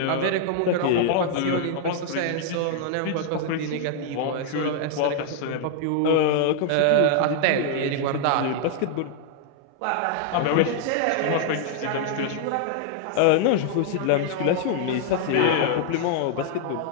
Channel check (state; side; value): different; both; correlation 0.00